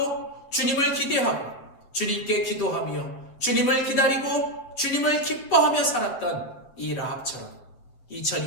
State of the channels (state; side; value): late; right; 8.8 ms